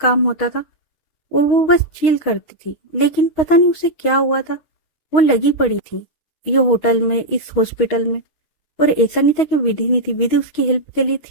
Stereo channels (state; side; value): late; right; 6.3 ms